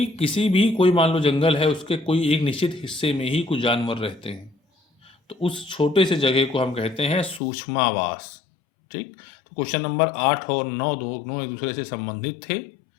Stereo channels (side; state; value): right; drops out; at 7.4 s